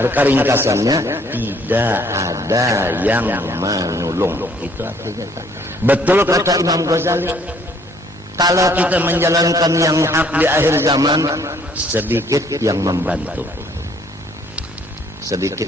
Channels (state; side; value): normal; both; correlation 0.62